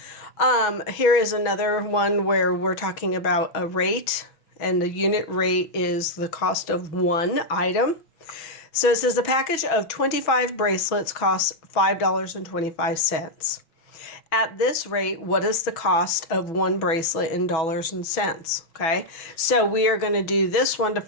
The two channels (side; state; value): right; late; 6.1 ms